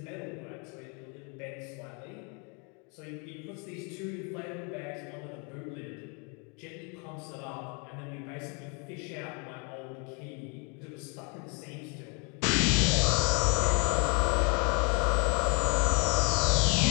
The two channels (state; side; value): quieter; right; 34.9 dB